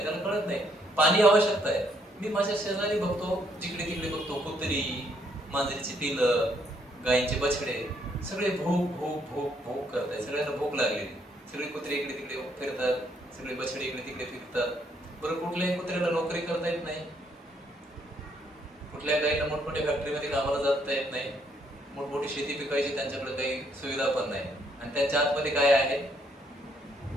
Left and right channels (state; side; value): normal; both; correlation 0.71